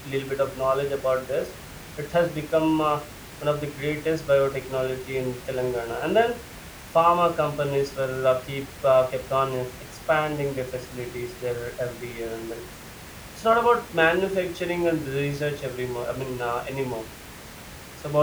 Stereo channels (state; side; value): identical; both; correlation 1.00